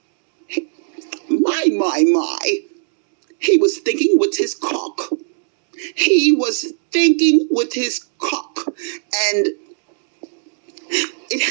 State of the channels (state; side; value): silent; left; digital silence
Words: My. He was thinking with his cock. He was thinking with his cock. And it